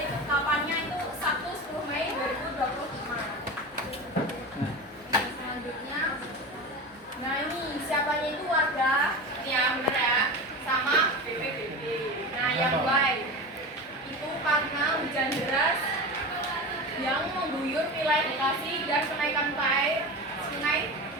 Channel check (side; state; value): both; normal; correlation 0.27